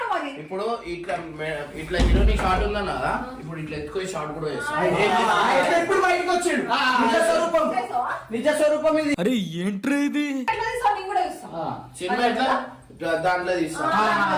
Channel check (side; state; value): both; identical; correlation 1.00